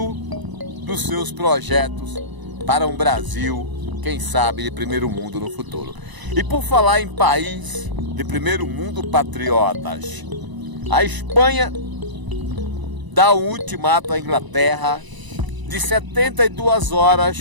dos seus projetos para um Brasil, quem sabe, de primeiro mundo no futuro. E por falar em país de primeiro mundo, patriotas, a Espanha dá um ultimato à Inglaterra de 72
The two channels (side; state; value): left; late; 1.0 ms